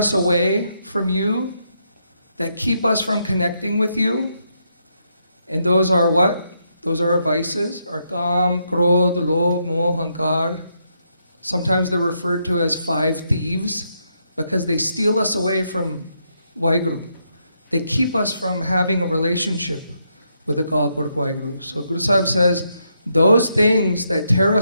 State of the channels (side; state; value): both; inverted; correlation -0.79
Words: away from you, that keep us from connecting with you, and those are what? Those are our vices, our kam, krodh, lobh, moh, hankar. Sometimes they're referred to as 5 thieves because they steal us away from Waheguru. They keep us from having a relationship with the Akal Purkh Waheguru. So Guru Sahib says, those things that tear